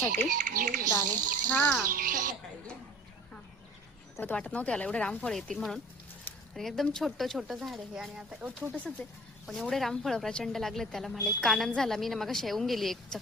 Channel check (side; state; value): both; normal; correlation 0.46